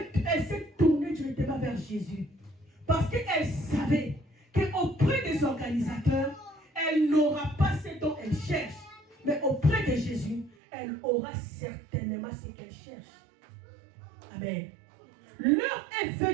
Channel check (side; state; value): left; drops out; at 10.6 s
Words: s'est tournée directement vers Jésus. Parce qu'elle savait qu'auprès des organisateurs, elle n'aura pas ce dont elle cherche. Mais auprès de Jésus, elle aura certainement ce qu'elle cherche. Amen. L'heure est